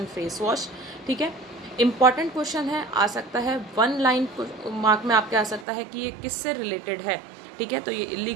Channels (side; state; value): left; drops out; at 5.7 s